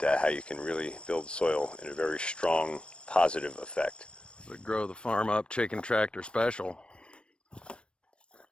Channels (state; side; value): late; right; 0.057 ms